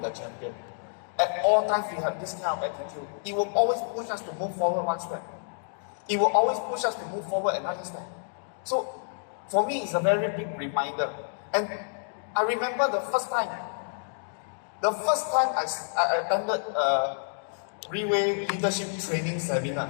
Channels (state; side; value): silent; right; digital silence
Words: champion. At all times, we have this kind of attitude. It will always push us to move forward one step. It will always push us to move forward another step. So, for me, it's a very big reminder. And I remember the first time I attended a Riway leadership training